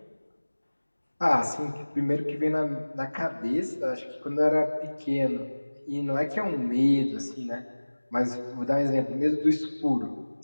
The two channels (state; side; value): inverted; both; correlation -1.00